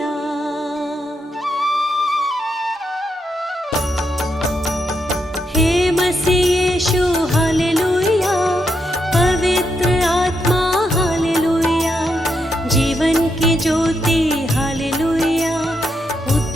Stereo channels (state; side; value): normal; both; correlation 0.81